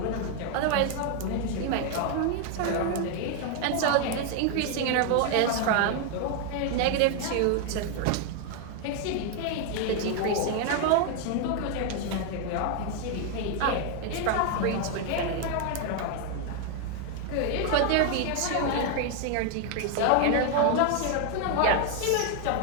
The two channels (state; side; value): different; both; correlation 0.00